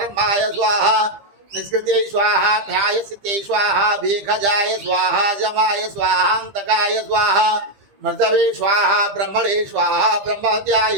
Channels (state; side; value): late; left; 15 ms